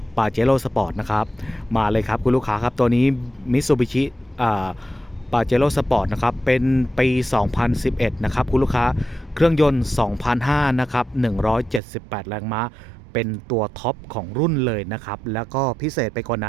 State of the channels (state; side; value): drops out; left; at 11.8 s